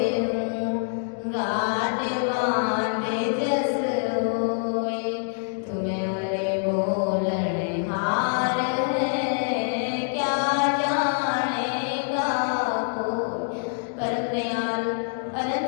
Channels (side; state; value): right; silent; digital silence